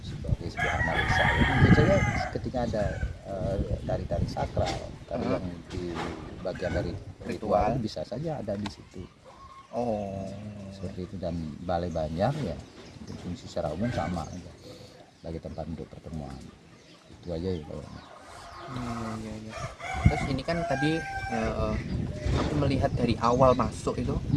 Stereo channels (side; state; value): both; identical; correlation 1.00